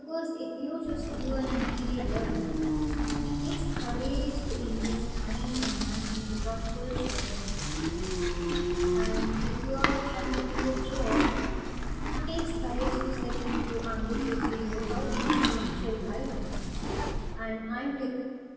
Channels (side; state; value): both; identical; correlation 1.00